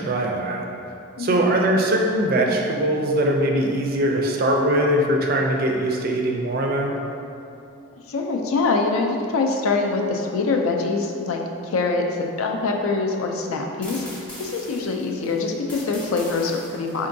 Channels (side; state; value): both; normal; correlation 0.21